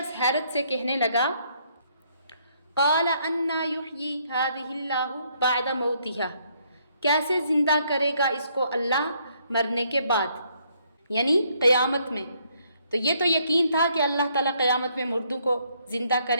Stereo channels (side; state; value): both; inverted; correlation -0.70